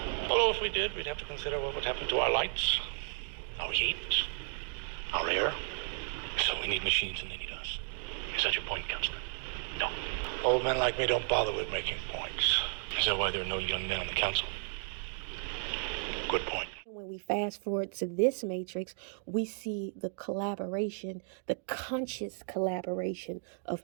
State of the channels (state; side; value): silent; left; 55 dB below the other